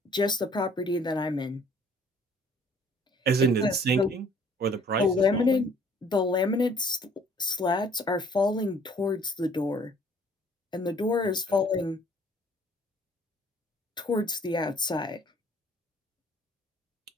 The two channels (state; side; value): normal; both; correlation 0.57